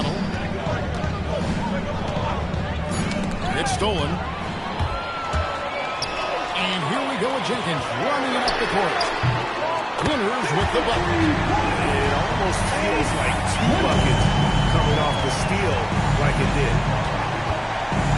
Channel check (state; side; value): identical; both; correlation 1.00